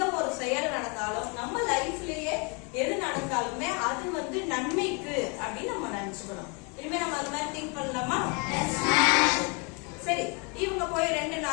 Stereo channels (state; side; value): quieter; right; 33.4 dB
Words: ஒரு செயல் நடந்தாலும் நம்ம லைஃப்லயே எது நடந்தாலுமே அது வந்து நன்மைக்கு அப்படின்னு நம்ம நினைச்சுக்கணும். இனிமே நம்ம அது மாதிரி திங்க் பண்ணலாமா? சரி, இவங்க போய் 2